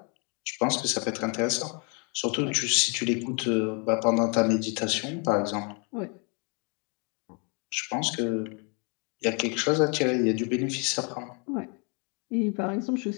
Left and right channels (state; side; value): quieter; right; 35.3 dB